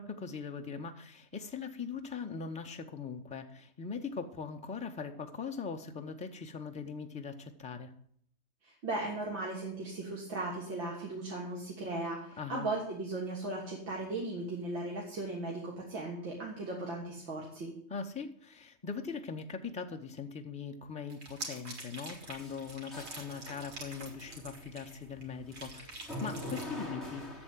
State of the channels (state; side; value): late; left; 3.2 ms